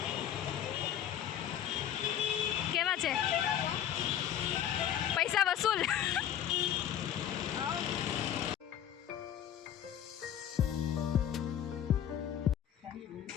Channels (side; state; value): right; quieter; 10.4 dB